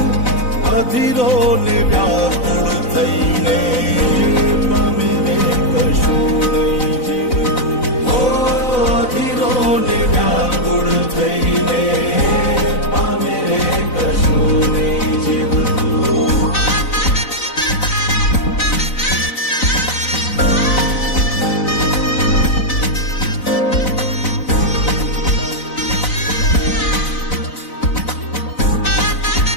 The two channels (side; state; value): right; late; 4.0 ms